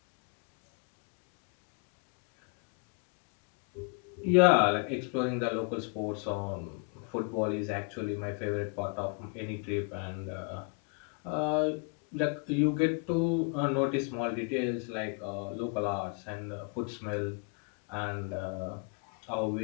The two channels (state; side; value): quieter; right; 37.8 dB